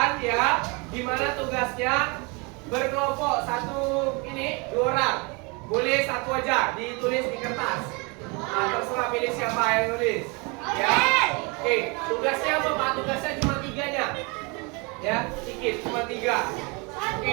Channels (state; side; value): quieter; left; 29.9 dB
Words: ya, dimana tugasnya berkelompok dua orang. Boleh satu aja ditulis di kertas. Nah, terserah pilih siapa yang nulis. Ya, oke. Tugasnya apa Pak? Tugasnya cuma 3-nya. Ya, sedikit, cuma 3.